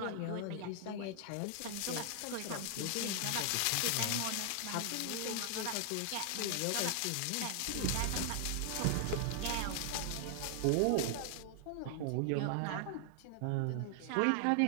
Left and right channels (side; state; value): both; different; correlation 0.00